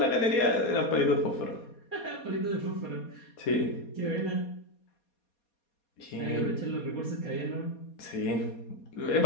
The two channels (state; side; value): late; right; 4.2 ms